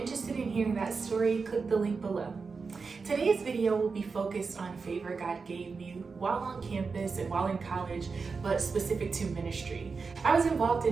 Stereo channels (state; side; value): quieter; left; 4.8 dB